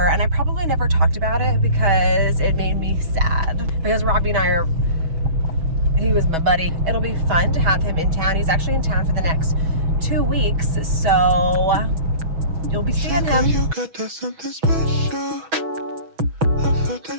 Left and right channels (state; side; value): late; left; 6.2 ms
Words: and I probably never talked about it because it made me sad, because Robby and he was my buddy. It'll be fun to have him in town. He's actually in town for the next 2 weeks, so you'll be seeing him. You got that something special. I felt